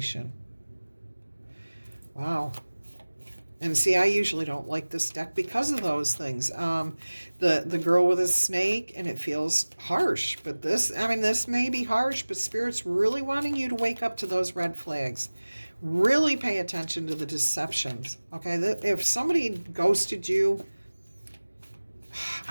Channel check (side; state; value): both; inverted; correlation -1.00